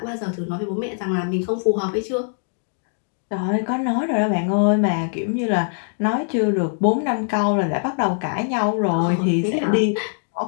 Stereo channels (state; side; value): silent; right; digital silence